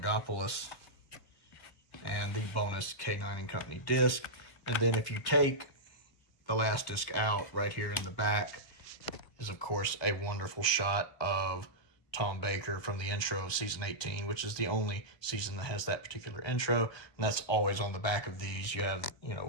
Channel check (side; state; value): right; late; 1.2 ms